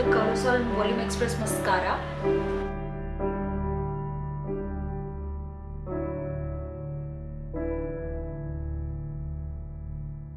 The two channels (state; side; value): identical; both; correlation 1.00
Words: कलोसल volume express mascara.